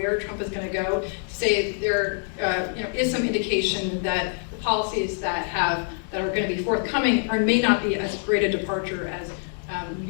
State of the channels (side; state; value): right; silent; 58 dB below the other